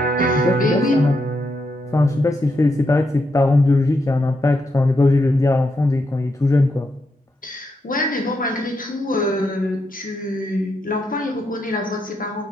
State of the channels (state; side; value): normal; both; correlation 0.82